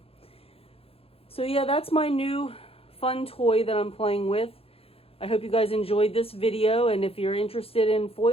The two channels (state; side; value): late; right; 0.28 ms